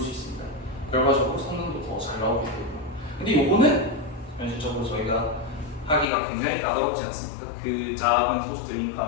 수 있습니다. 결과적으로 성능도 더 잘 나오게 되고요. 근데 요거는 현실적으로 저희가 하기가 굉장히 까다롭지 않습니까? 그 작은 소스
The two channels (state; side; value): drops out; right; at 6.1 s